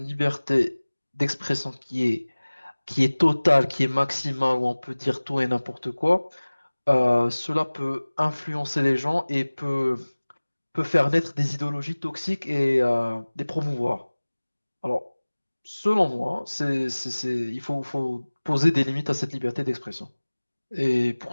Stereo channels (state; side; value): inverted; both; correlation -1.00